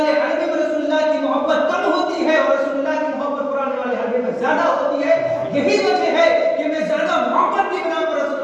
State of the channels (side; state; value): both; identical; correlation 1.00